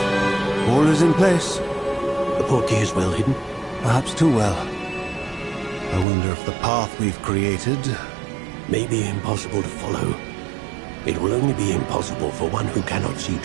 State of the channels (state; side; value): drops out; left; at 6.1 s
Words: All is in place. The portkey is well hidden. Perhaps too well. I wonder if the path we've created... may be impossible to follow. It will only be impossible for one who cannot see